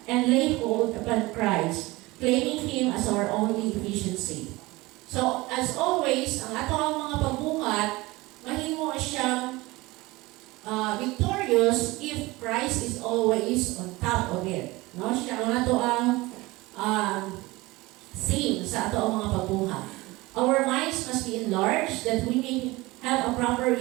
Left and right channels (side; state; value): left; quieter; 21.2 dB